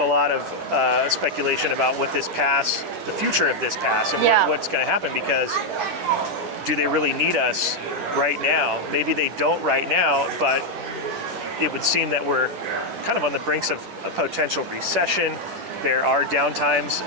lot of speculation about what this pass, the future of this pass, and what's going to happen, because do they really need us right now? Maybe they don't right now, but it would seem that we're kind of on the brinks of a potential recession. There are downtimes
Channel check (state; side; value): late; left; 10 ms